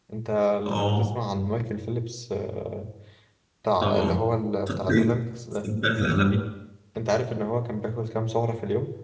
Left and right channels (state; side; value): identical; both; correlation 1.00